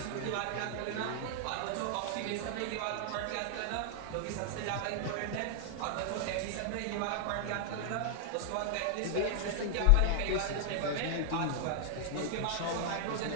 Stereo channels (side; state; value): both; different; correlation 0.00